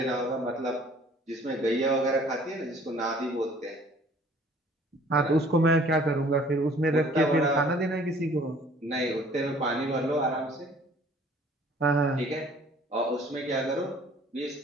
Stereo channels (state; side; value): normal; both; correlation 0.54